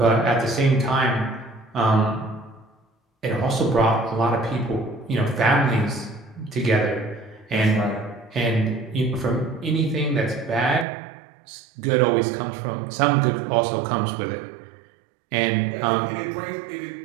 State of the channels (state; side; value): drops out; left; at 10.9 s